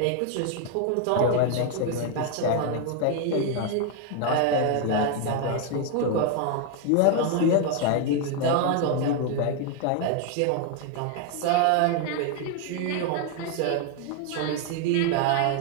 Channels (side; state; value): both; different; correlation 0.00